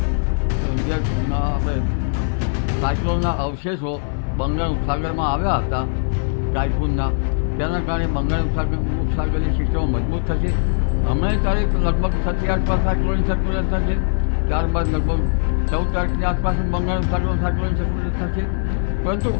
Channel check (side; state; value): right; silent; digital silence